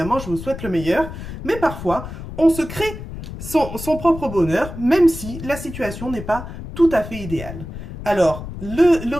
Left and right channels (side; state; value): left; noise; rumble, 10 dB below the sound